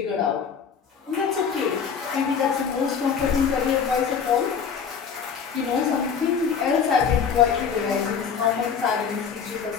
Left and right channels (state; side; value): quieter; right; 6.7 dB